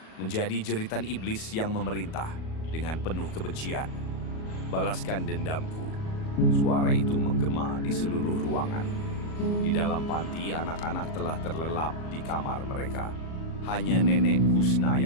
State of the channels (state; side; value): late; right; 37 ms